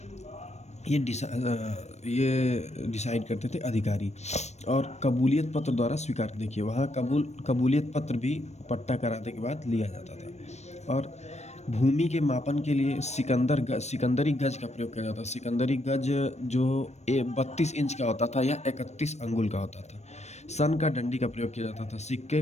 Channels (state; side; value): late; right; 0.32 ms